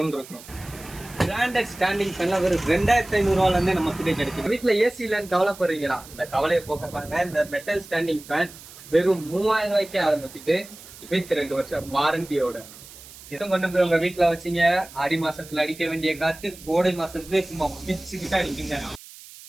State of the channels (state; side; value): noise; right; hiss, 18 dB below the sound